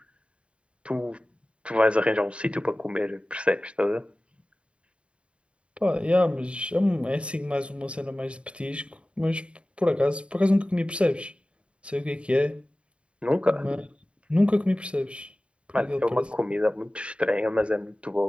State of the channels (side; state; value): left; late; 0.059 ms